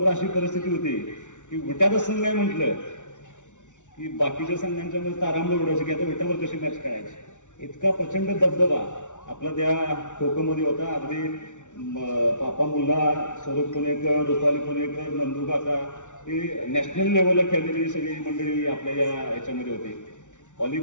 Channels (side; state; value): right; late; 0.86 ms